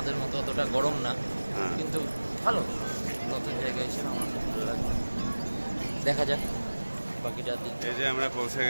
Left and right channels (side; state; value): both; inverted; correlation -1.00